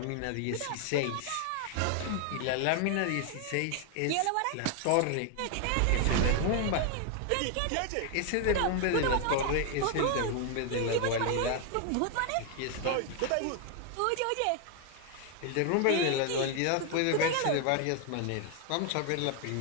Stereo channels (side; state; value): both; different; correlation 0.00